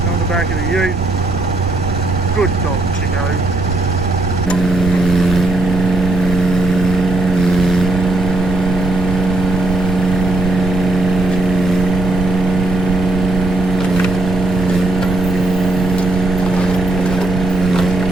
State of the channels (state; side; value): noise; right; rumble, 4 dB below the sound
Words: on the back of the ute. Good dog, Chico.